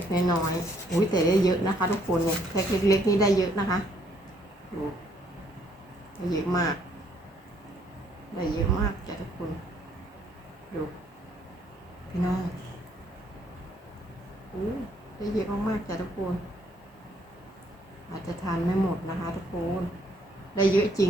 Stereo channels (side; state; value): both; normal; correlation 0.67